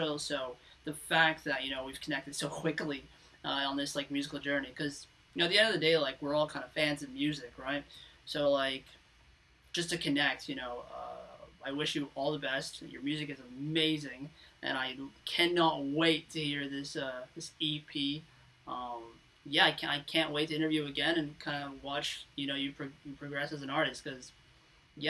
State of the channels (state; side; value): identical; both; correlation 1.00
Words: So the fact that, you know, we've connected so quickly on this like musical journey, because, you know, at the end of the day, like, we're all kind of fans of music, right? So like, just to connect, you know, I wish you all the best. Your music is amazing, and I cannot wait to hear this this EP. Yeah, I can't wait to interview again and kind of watch, you know, you progress as an artist, because,